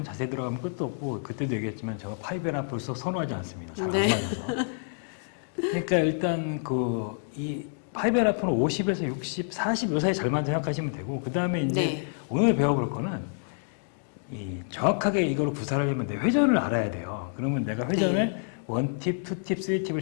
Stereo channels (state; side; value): silent; right; digital silence